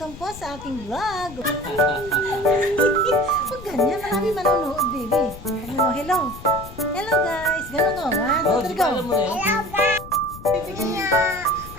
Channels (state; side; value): noise; left; rumble, 15 dB below the sound